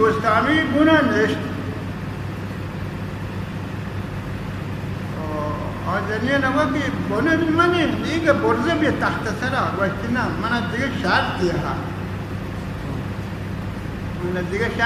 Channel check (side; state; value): both; identical; correlation 1.00